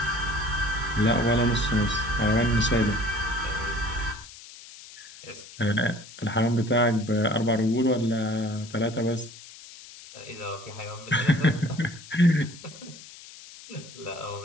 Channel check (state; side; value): noise; left; hiss, 18 dB below the sound